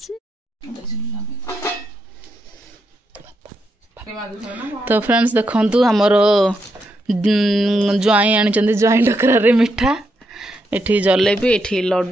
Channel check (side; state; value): both; normal; correlation 0.82